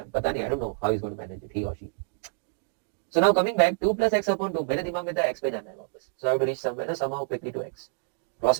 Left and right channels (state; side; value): silent; left; 60 dB below the other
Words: पता नहीं, I don't know how he's going to manage it, he or she. So now coming back, 2 plus x upon 2, मेरे दिमाग में था x पे जाना है वापस. So I have to reach somewhere somehow quickly to x.